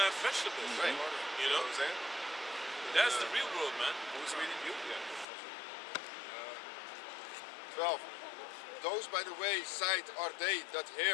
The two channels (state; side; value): drops out; right; at 5.2 s